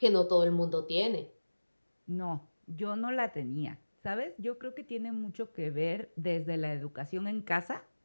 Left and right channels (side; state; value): both; inverted; correlation -1.00